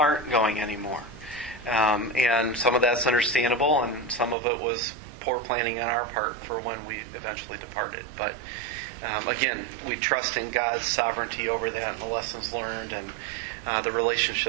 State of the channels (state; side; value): drops out; left; at 4.4 s